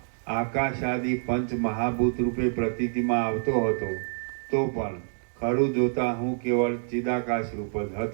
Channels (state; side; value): silent; left; digital silence